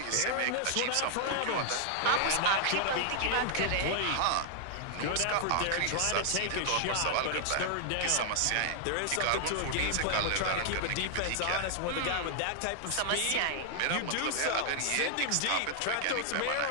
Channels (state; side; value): different; both; correlation -0.01